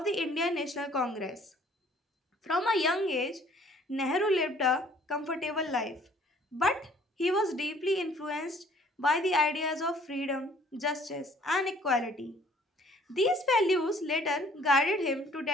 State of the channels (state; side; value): normal; both; correlation 0.57